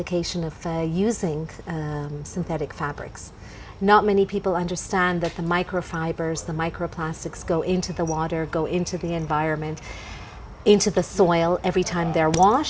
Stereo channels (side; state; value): both; identical; correlation 1.00